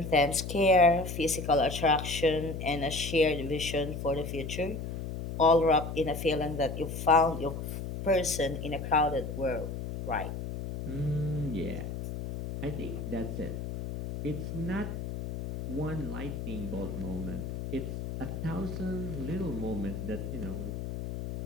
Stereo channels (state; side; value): noise; left; hum, 6 dB below the sound